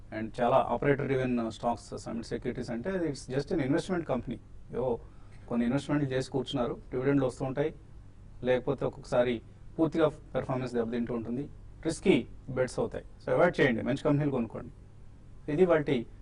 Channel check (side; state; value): both; identical; correlation 1.00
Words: అండ్ చాలా operator driven stocks Summit Securities అంటే it's just an investment company. ఏవో కొన్ని ఇన్వెస్ట్మెంట్లు చేసి కూర్చున్నారు, డివిడెండ్లు వస్తూ ఉంటాయి, లేకపోతే ఒక్కొక్కసారి పూర్తిగా పెర్ఫార్మెన్స్ దెబ్బతింటూ ఉంటుంది, రిస్కీ బెట్స్ అవుతాయి. సో అవాయిడ్ చేయండి, మంచి కంపెనీలు కొనుక్కోండి. ఇది వాటి